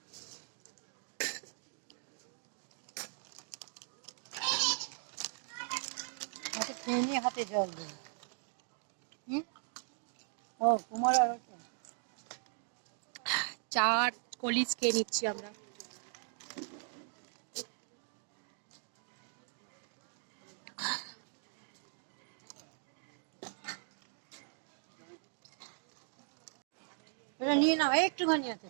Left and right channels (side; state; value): left; silent; 52 dB below the other